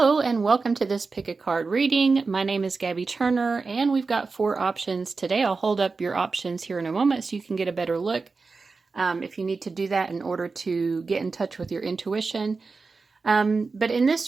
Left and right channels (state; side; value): quieter; left; 4.2 dB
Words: and welcome to this pick a card reading. My name is Gabby Turner and we've got 4 options today. I'll hold up your options here in a moment so you can get a better look if you need to do that in order to get in touch with your intuition. But in